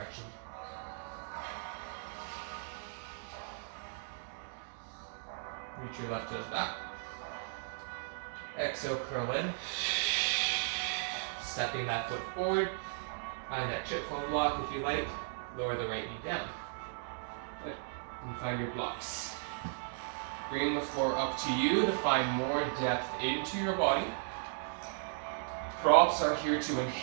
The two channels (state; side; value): silent; left; digital silence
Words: Reach your left toes back. Exhale, curl in. Stepping that foot forward. Find that chip foam block if you like. Lower the right knee down. Good. And find your blocks. Bring the floor up to you to find more depth into your body. Props are here to